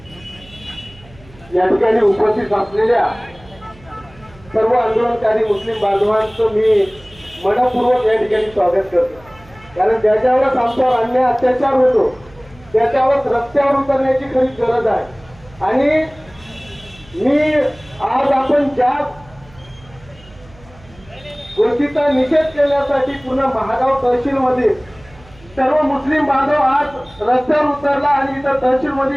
या ठिकाणी उपस्थित असलेल्या सर्व आंदोलनकारी मुस्लिम बांधवांचं मी मनपूर्वक या ठिकाणी स्वागत करतो। कारण ज्याच्यावरच आमच्यावर अन्याय अत्याचार होतो त्याच्यावरच रस्त्यावर उतरण्याची खरी गरज आहे। आणि मी आज आपण ज्या गोष्टीचा निषेध केल्यासाठी पूर्ण महागाव तहसील मध्ये सर्व मुस्लिम बांधव आज रस्त्यावर उतरला आणि इथं तहसील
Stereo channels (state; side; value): noise; right; hum, 24 dB below the sound